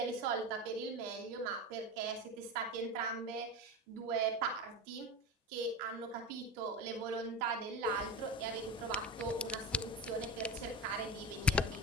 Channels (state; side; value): normal; both; correlation 0.24